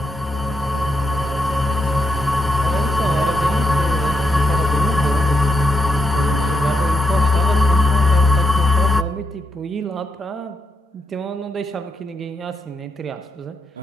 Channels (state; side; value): normal; both; correlation 0.82